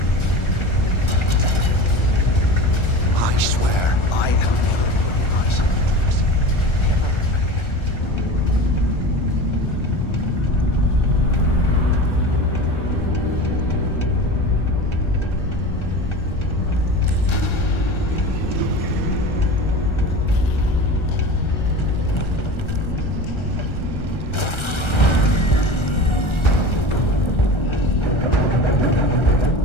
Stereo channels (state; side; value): late; right; 1.3 ms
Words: I swear, I am never putting ice in the drinks. Never again.